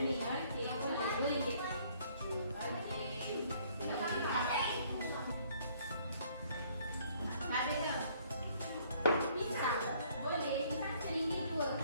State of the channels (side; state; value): both; inverted; correlation -0.62